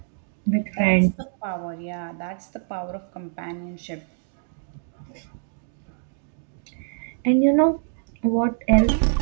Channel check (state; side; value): silent; left; digital silence